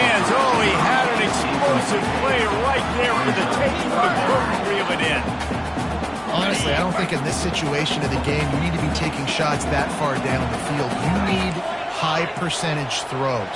Oh, he had an explosive play right there for the taking, but couldn't reel it in. Honestly, I don't think in this situation of the game you need to be taking shots that far down the field. You need high percentage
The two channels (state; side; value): identical; both; correlation 1.00